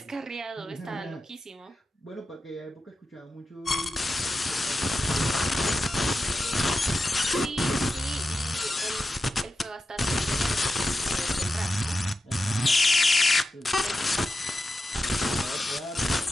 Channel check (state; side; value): normal; both; correlation 0.90